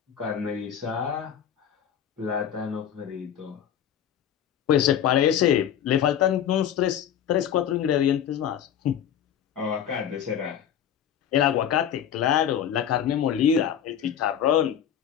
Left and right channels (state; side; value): quieter; right; 9.4 dB